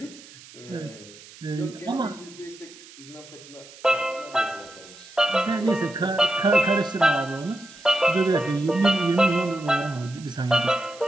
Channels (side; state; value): right; noise; hiss, 20 dB below the sound